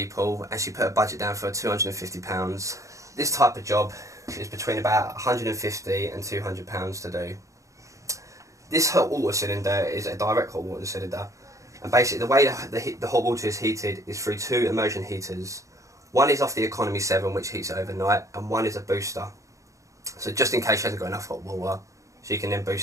and she put a budget down for £250. This type of job is between about £150 and £200 to do. This hot water cylinder is a direct hot water cylinder, and basically the way the hot water is heated is through two immersion heaters. One is off the Economy 7, which heats it overnight, and one is a booster. So just in case she hasn't got enough hot water, she can then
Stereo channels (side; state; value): left; late; 0.15 ms